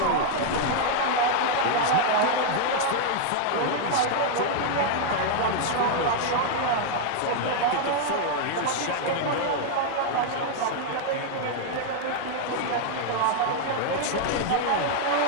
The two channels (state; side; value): different; both; correlation 0.00